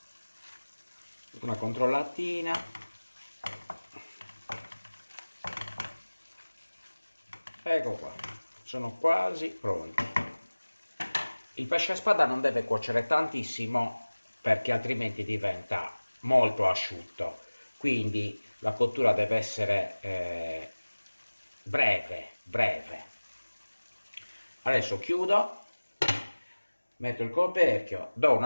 Una controllatina. Ecco qua, sono quasi pronti. Il pesce a spada non deve cuocere tantissimo perché altrimenti diventa molto asciutto, quindi la cottura deve essere breve. Adesso chiudo, metto il coperchio, do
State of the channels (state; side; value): inverted; both; correlation -1.00